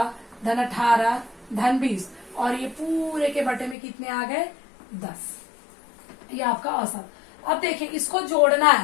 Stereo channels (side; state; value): right; drops out; at 3.8 s